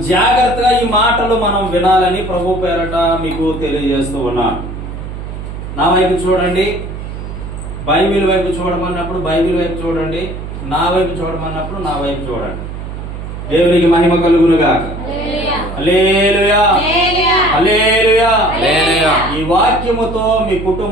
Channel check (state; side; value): noise; right; hum, 8 dB below the sound